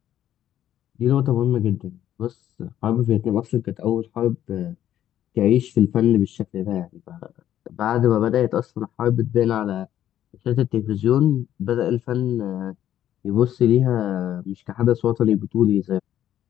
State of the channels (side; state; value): right; quieter; 11.5 dB